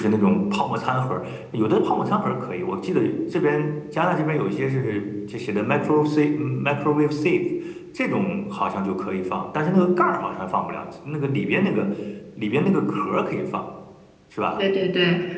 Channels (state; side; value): identical; both; correlation 1.00